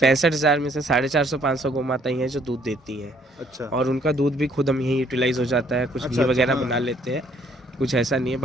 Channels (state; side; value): normal; both; correlation 0.64